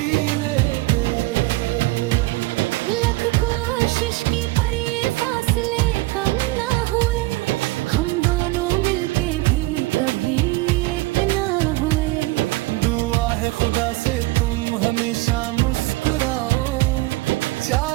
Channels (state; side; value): quieter; left; 20.7 dB